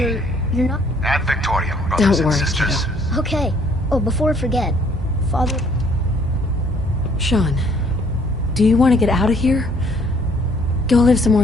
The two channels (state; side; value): normal; both; correlation 0.62